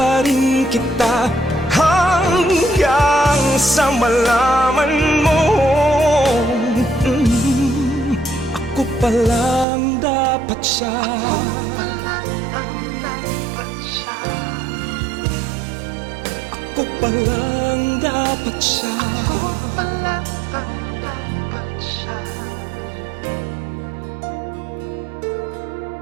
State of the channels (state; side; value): drops out; left; at 9.7 s